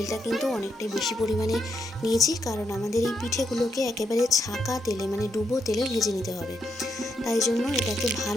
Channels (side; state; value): both; normal; correlation 0.80